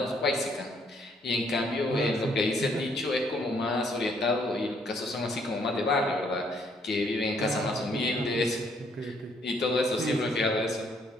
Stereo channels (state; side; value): normal; both; correlation 0.68